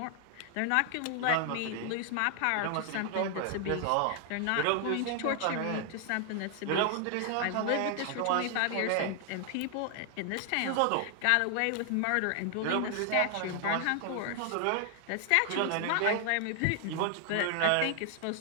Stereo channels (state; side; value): different; both; correlation 0.00